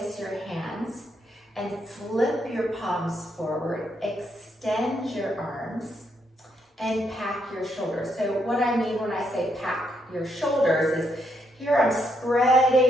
your hands and flip your palms forward, extend your arms, and pack your shoulders. So what I mean when I say pack your shoulders is here I'm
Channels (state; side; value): normal; both; correlation 0.77